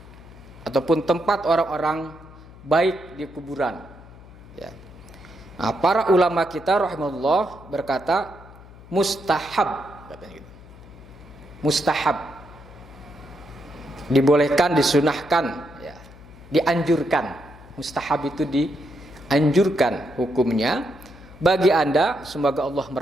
ataupun tempat orang-orang baik di kuburan ya. Nah, para ulama kita rahimahullah berkata mustahab, katanya gitu. Mustahab, dibolehkan, disunahkan ya. Dianjurkan. Mustahab itu dianjurkan hukumnya bagi Anda, semoga Allah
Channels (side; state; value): left; noise; hum, 20 dB below the sound